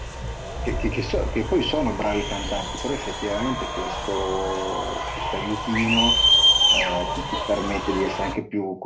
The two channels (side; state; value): both; identical; correlation 1.00